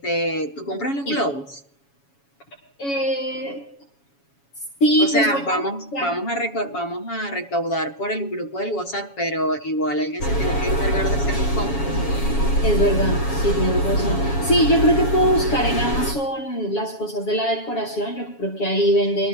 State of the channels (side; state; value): right; late; 7.2 ms